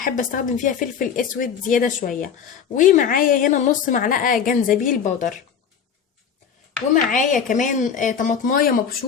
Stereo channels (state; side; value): quieter; right; 7.4 dB